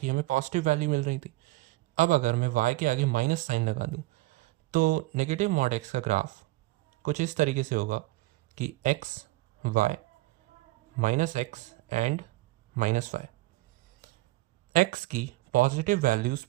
की हमें पॉजिटिव वैल्यू मिल रही थी. अब अगर मैं y के आगे माइनस साइन लगा दूं तो नेगेटिव मॉड x का ग्राफ कुछ इस तरीके से होगा कि x y -x and -y. x की पॉजिटिव वैल्यूज़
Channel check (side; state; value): left; quieter; 19.6 dB